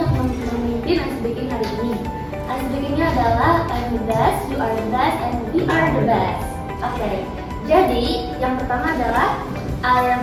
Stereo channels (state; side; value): identical; both; correlation 1.00